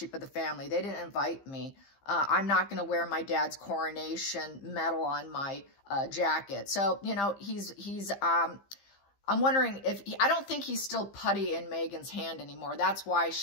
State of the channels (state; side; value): late; right; 15 ms